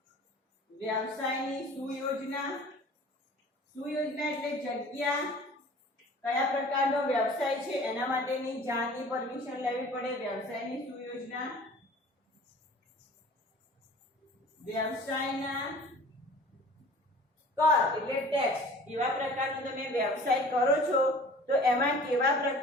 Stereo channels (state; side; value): normal; both; correlation 0.45